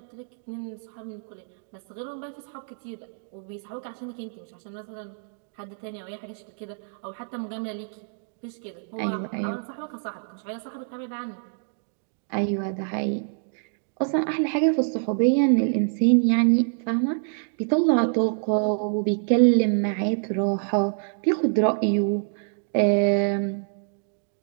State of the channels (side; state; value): left; silent; digital silence